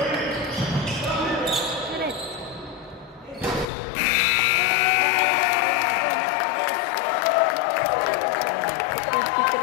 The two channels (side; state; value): right; drops out; at 3.7 s